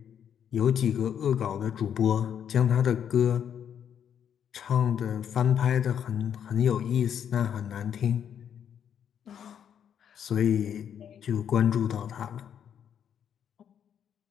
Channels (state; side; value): quieter; right; 8.7 dB